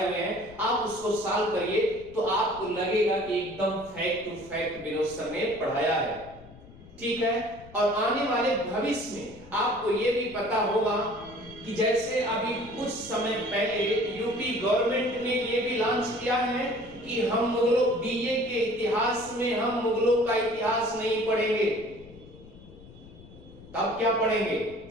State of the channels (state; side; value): noise; left; rumble, 20 dB below the sound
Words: हुए हैं, आप उसको सॉल्व करिए तो आपको लगेगा कि एकदम fact to fact Vinod sir ने पढ़ाया है। ठीक है। और आने वाले भविष्य में आपको यह भी पता होगा कि जैसे अभी कुछ समय पहले यूपी गवर्नमेंट ने यह भी लॉन्च किया है कि हम मुगलों बीए के इतिहास में हम मुगलों का इतिहास नहीं पढ़ेंगे। तब क्या पढ़ेंगे?